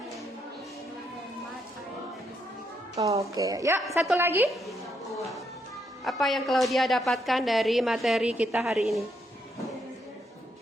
Oke, ya satu lagi. Apa yang Claudia dapatkan dari materi kita hari ini?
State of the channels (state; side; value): normal; both; correlation 0.77